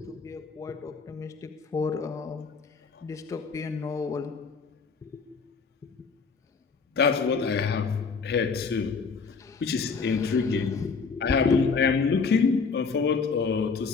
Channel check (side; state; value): right; quieter; 5.1 dB